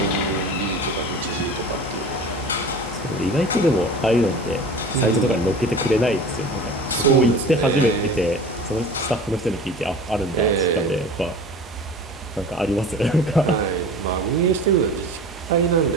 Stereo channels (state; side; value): normal; both; correlation 0.38